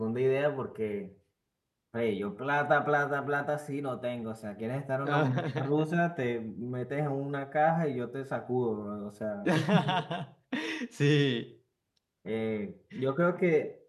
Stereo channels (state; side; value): identical; both; correlation 1.00